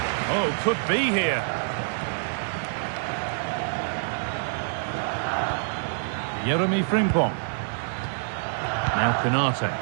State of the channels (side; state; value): left; silent; digital silence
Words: Oh, could be here. Jeremy Frimpong. Now Canate.